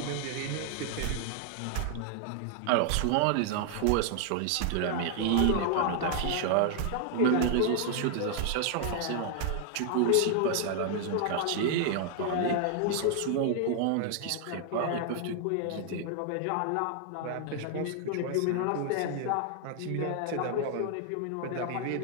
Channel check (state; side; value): different; both; correlation 0.00